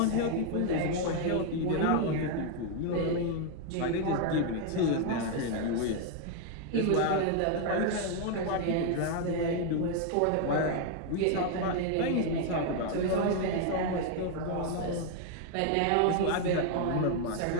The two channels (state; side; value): different; both; correlation 0.00